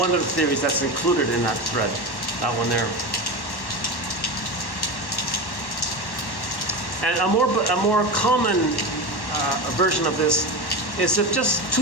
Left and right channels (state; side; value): late; right; 1.1 ms